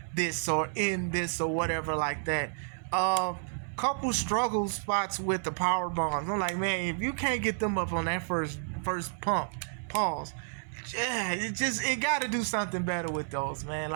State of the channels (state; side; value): silent; left; 57 dB below the other